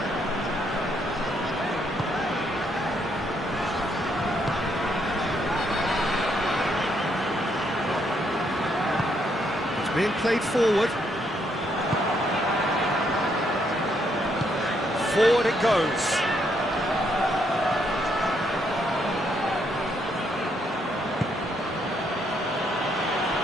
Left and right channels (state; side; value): normal; both; correlation 0.74